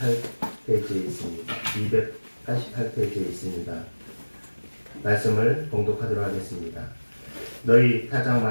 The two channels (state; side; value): inverted; both; correlation -1.00